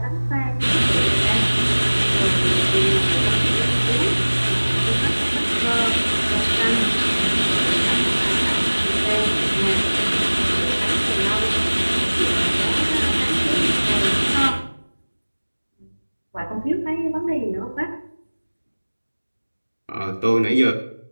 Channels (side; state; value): both; inverted; correlation -1.00